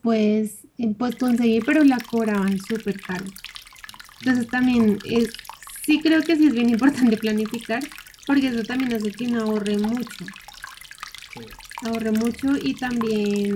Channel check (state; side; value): identical; both; correlation 1.00